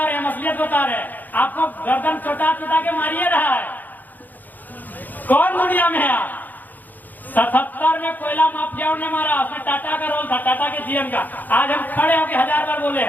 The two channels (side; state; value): right; late; 0.084 ms